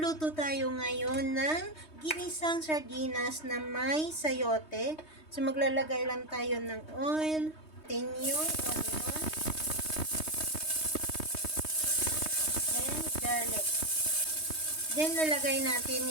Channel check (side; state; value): right; late; 3.2 ms